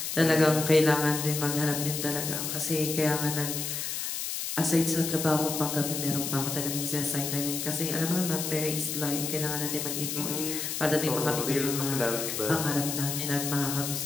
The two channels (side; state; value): left; noise; hiss, 3 dB below the sound